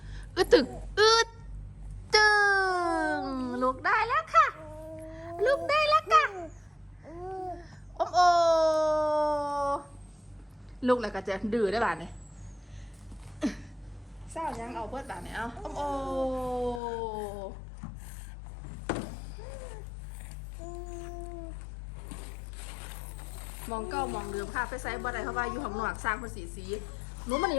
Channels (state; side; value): drops out; right; at 16.8 s